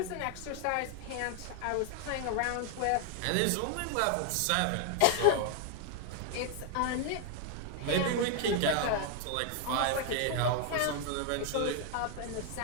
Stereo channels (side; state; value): both; different; correlation 0.00